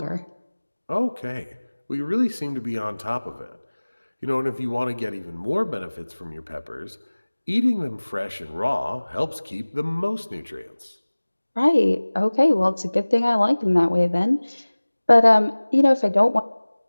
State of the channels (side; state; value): both; inverted; correlation -1.00